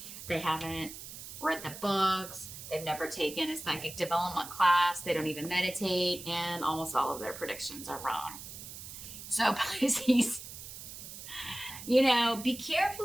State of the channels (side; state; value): right; noise; hiss, 12 dB below the sound